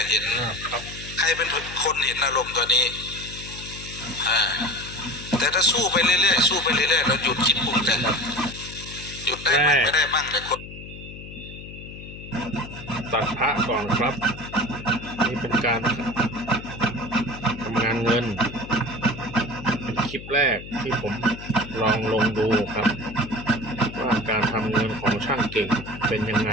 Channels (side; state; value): left; noise; hum, 13 dB below the sound